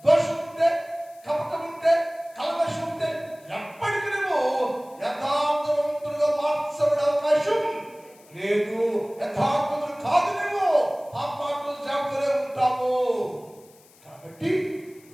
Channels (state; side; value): noise; left; hiss, 27 dB below the sound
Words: దోషం ఉంటే, కపటం ఉంటే, కల్మషం ఉంటే ఎప్పటికీ నువ్వు యథార్థవంతులుగా మార్చబడే అవకాశం లేదు. యథార్థవంతులు కాదు, నువ్వు పాపాత్మలు జాగ్రత్తగా ఉంటావు. కాబట్టి